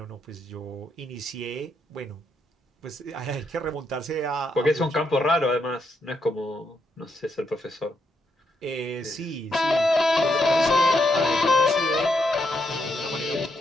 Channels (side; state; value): both; normal; correlation 0.78